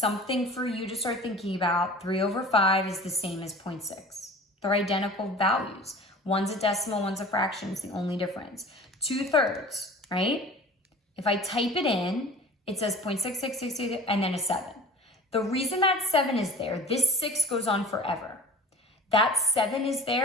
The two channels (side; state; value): both; normal; correlation 0.43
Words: for you to start thinking about. 3 over 5 is the same as 0.6. They're identical values. One's a decimal, one's a fraction. It's the only difference. 2/3, right? If I type it in, it says 0.6666 and then a 7. The reason that 7 is there, this 6 goes on forever. That 7 is